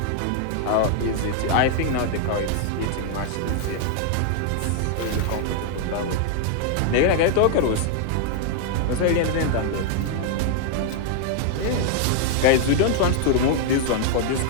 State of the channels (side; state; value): both; different; correlation 0.00